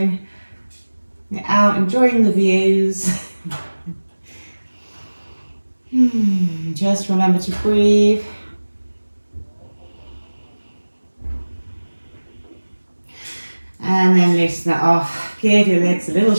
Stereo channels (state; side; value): inverted; both; correlation -1.00